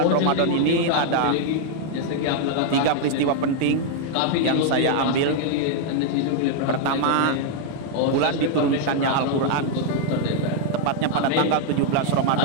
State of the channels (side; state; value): both; different; correlation 0.00